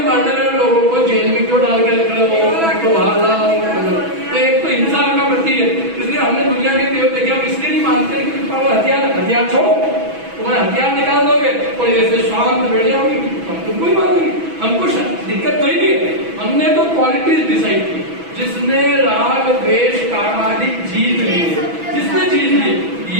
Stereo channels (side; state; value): left; late; 6.1 ms